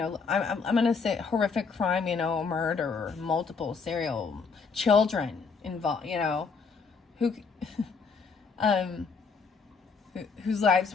going to say horrific crime, murder, multiple serial children involved, who whose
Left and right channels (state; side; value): quieter; right; 5.2 dB